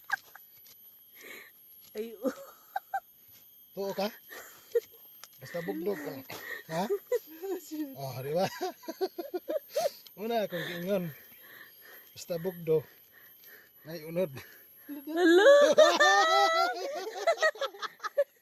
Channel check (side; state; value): both; identical; correlation 1.00